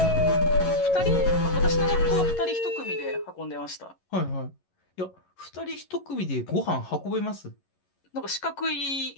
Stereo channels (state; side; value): late; right; 11 ms